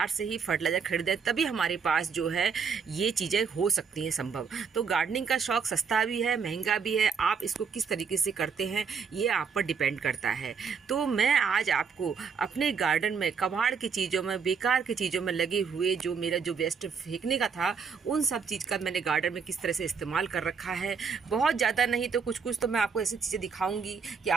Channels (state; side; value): quieter; left; 6.0 dB